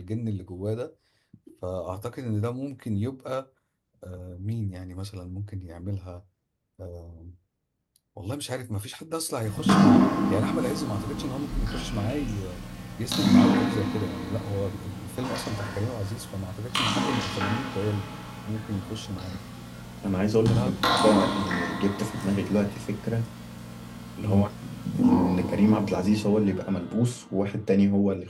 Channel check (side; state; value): both; identical; correlation 1.00